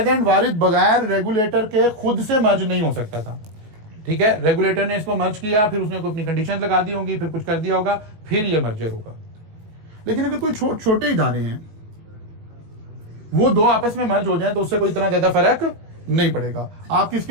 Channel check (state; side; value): late; left; 19 ms